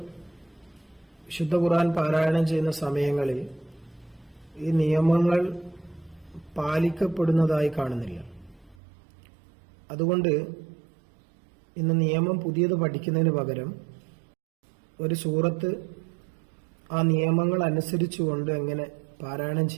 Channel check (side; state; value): left; drops out; at 8.8 s